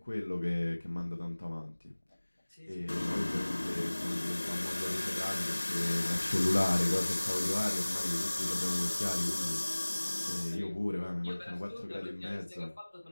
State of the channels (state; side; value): inverted; both; correlation -1.00